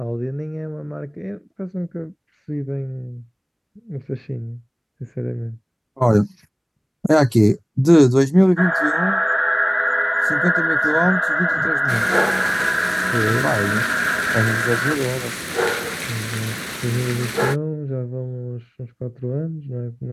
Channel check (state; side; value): identical; both; correlation 1.00